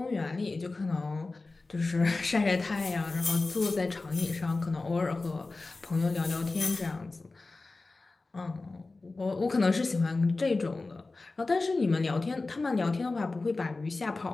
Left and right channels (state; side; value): quieter; right; 3.5 dB